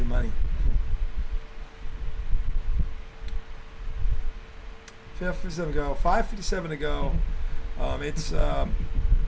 money. 5:57 to go. 5:57 to go.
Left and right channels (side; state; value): both; identical; correlation 1.00